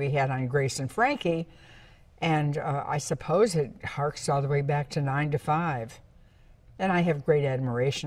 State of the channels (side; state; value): both; identical; correlation 1.00